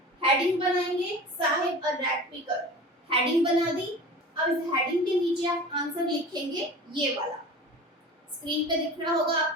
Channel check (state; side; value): normal; both; correlation 0.36